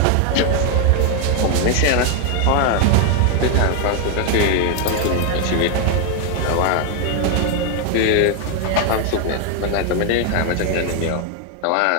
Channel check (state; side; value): different; both; correlation 0.01